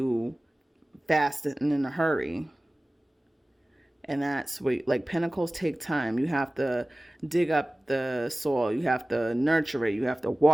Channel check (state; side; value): normal; both; correlation 0.97